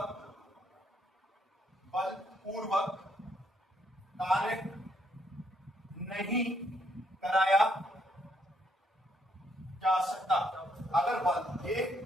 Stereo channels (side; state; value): both; normal; correlation 0.72